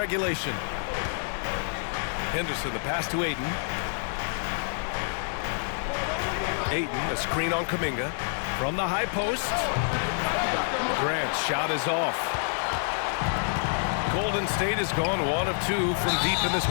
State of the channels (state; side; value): silent; right; digital silence